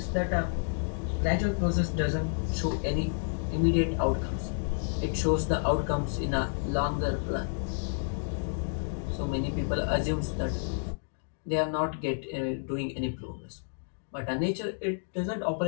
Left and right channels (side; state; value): right; silent; digital silence